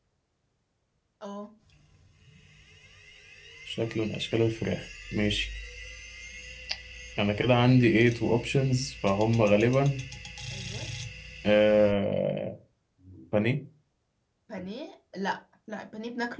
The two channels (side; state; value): both; identical; correlation 1.00